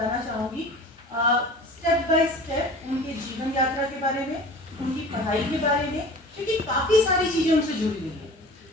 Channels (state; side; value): normal; both; correlation 0.41